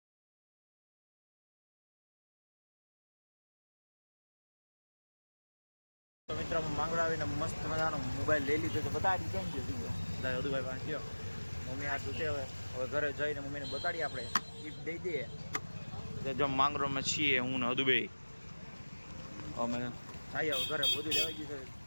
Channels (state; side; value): inverted; both; correlation -1.00